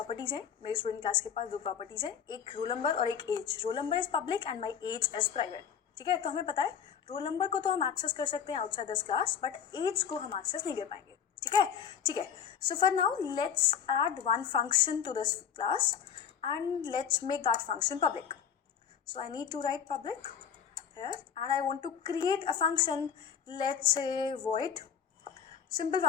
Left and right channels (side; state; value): right; quieter; 8.0 dB